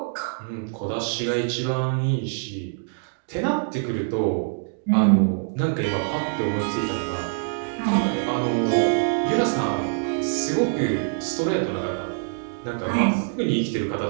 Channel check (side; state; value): left; silent; digital silence